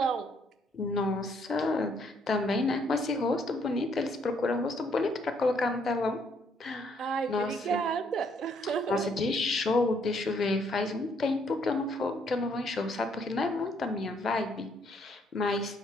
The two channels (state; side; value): normal; both; correlation 0.69